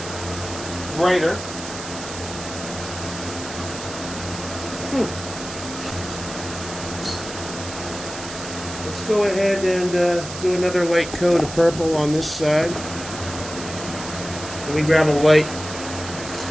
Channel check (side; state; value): right; noise; hiss, 10 dB below the sound